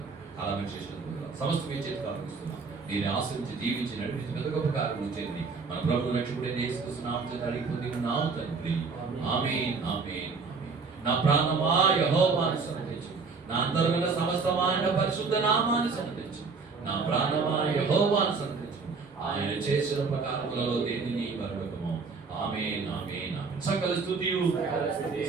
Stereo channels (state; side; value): quieter; left; 4.7 dB